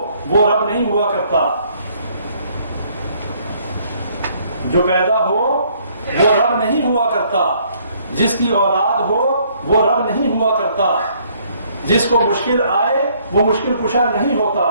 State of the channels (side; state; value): both; inverted; correlation -0.64